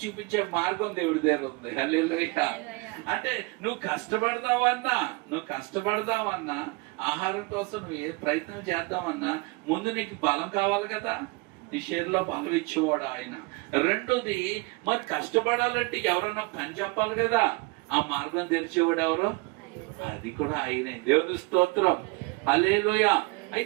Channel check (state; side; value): quieter; left; 25.4 dB